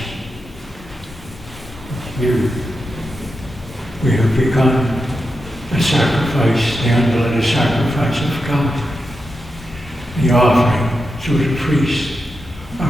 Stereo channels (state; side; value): normal; both; correlation 0.88